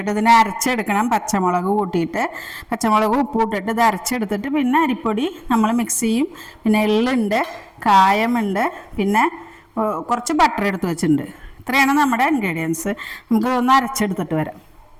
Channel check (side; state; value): both; identical; correlation 1.00